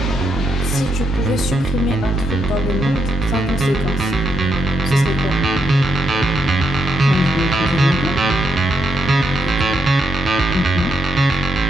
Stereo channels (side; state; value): both; normal; correlation 0.79